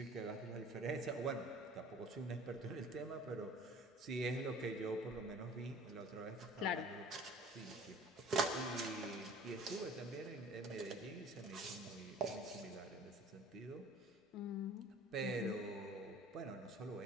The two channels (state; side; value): normal; both; correlation 0.48